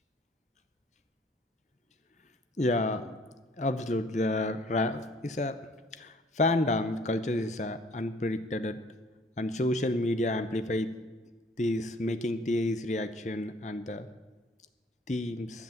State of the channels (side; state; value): both; normal; correlation 0.57